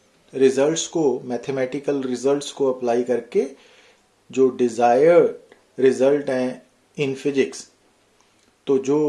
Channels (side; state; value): both; identical; correlation 1.00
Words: रिजल्ट्स को, मैथमेटिकल रिजल्ट्स को अप्लाई करके जो डिज़ायर्ड रिजल्ट हैं इन फिजिक्स, तो